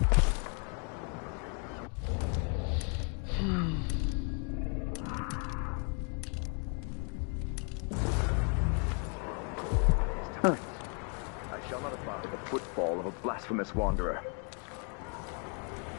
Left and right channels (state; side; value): quieter; right; 39.5 dB